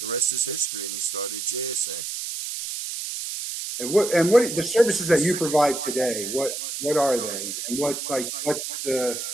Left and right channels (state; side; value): noise; right; hiss, 5 dB below the sound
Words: rest is history. And he started JSA. And what the services that you provide today? What are they? And what's the